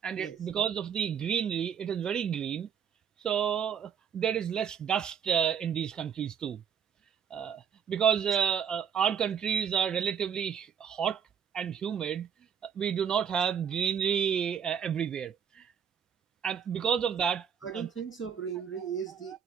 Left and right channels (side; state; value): left; quieter; 7.8 dB